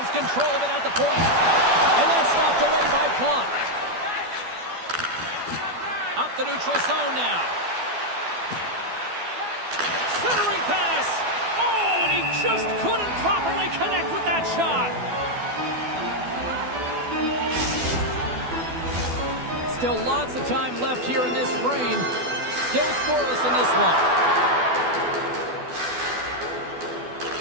control of it at the point. And that's knocked away by Plante. Up the neutral zone now. Centering pass. Oh, and he just couldn't properly connect with that shot. Still lots of time left here in this frame. Still scoreless in this one.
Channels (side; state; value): left; late; 12 ms